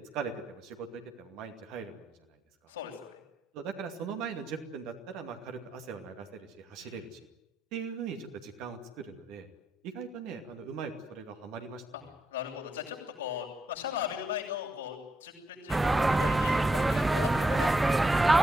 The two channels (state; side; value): normal; both; correlation 0.82